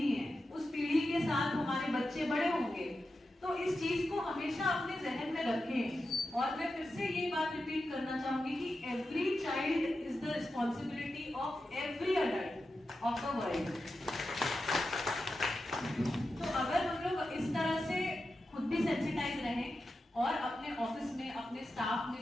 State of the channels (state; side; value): normal; both; correlation 0.90